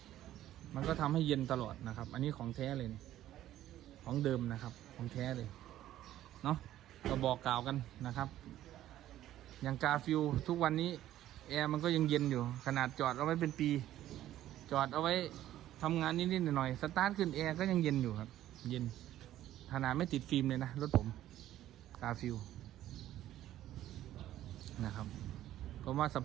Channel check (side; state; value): left; quieter; 13.1 dB